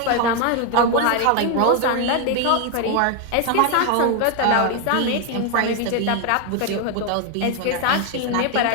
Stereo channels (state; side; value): different; both; correlation 0.01